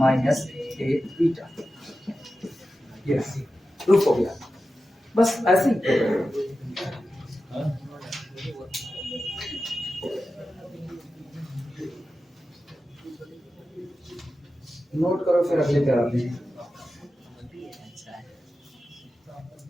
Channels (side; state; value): both; normal; correlation 0.93